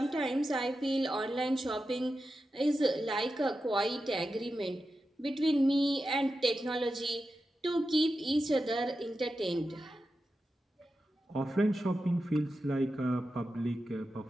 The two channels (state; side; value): normal; both; correlation 0.91